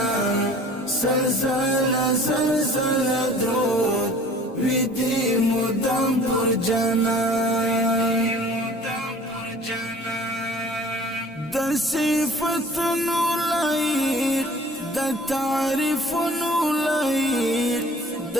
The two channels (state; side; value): normal; both; correlation 0.48